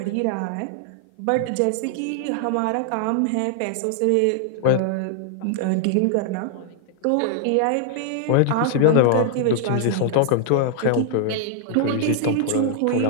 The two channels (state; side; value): different; both; correlation 0.00